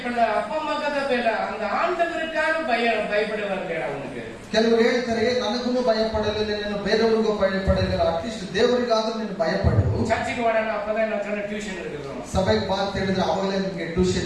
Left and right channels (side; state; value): both; identical; correlation 1.00